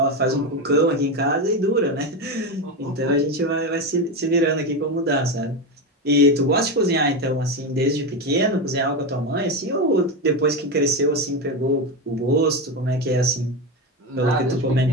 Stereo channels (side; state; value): both; normal; correlation 0.15